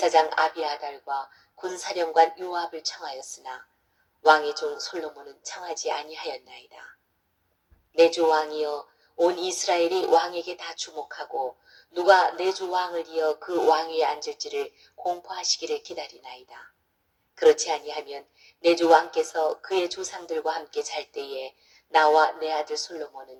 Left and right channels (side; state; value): both; identical; correlation 1.00